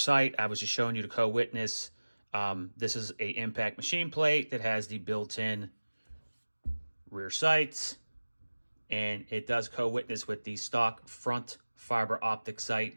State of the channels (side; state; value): both; inverted; correlation -1.00